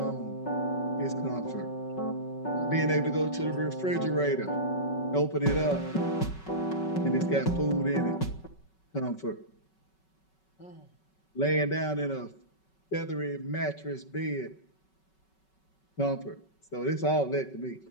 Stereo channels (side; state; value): right; late; 5.3 ms